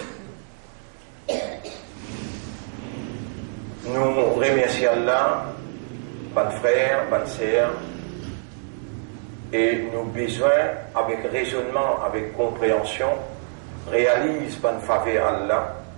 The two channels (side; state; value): left; silent; 62 dB below the other